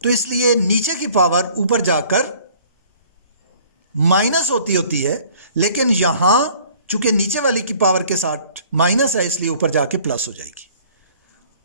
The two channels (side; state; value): both; inverted; correlation -0.54